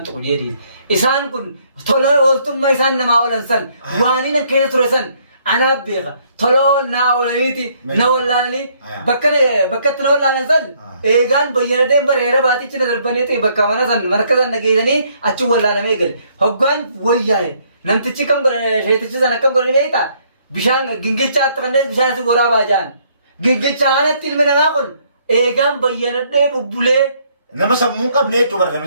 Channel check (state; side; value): inverted; both; correlation -0.67